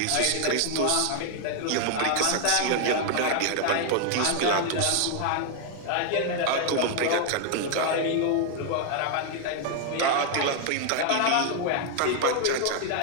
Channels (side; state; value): both; different; correlation 0.00